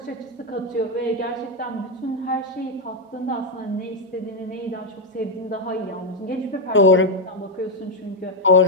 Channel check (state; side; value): normal; both; correlation 0.04